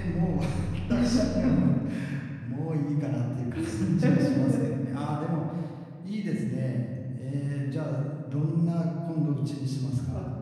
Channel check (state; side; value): identical; both; correlation 1.00